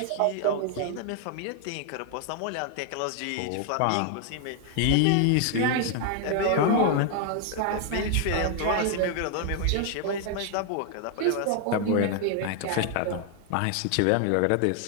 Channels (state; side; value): different; both; correlation 0.00